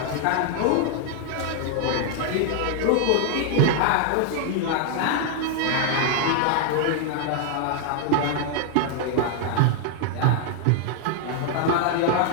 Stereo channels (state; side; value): different; both; correlation 0.00